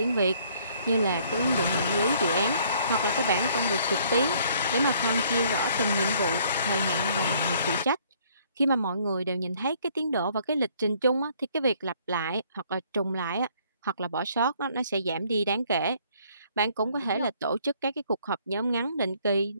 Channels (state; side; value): inverted; both; correlation -0.62